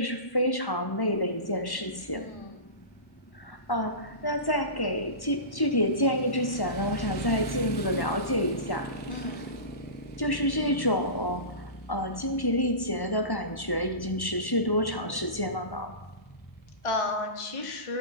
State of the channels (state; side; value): late; right; 1.1 ms